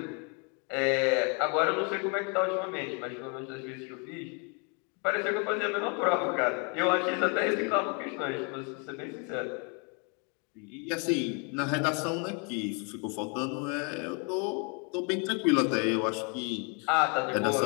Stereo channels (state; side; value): quieter; right; 35.7 dB